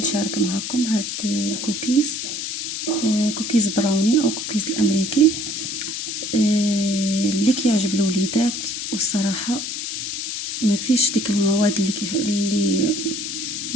معكم هاد الكوكيز، كوكيز براوني او كوكيز الامريكي اللي كيعجب الوليدات. والصراحة ما فيش ديك المواد اللي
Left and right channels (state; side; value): noise; left; hiss, 4 dB below the sound